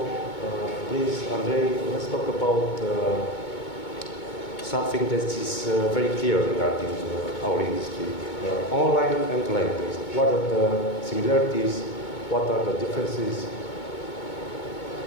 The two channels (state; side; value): late; right; 2.2 ms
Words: Please, Andrei, let's talk about something that is very clear regarding our industry. Online and land-based. What are the similarities? What are the differences?